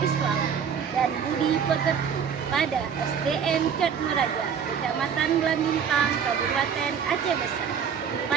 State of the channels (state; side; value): quieter; left; 7.3 dB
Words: dan budi pekerti pada SDN Cotmeraja, Kecamatan Blambintang, Kabupaten Aceh Besar.